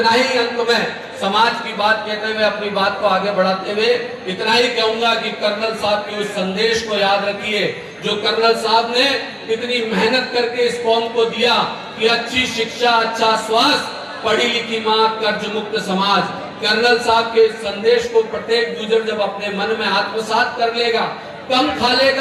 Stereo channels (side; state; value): both; identical; correlation 1.00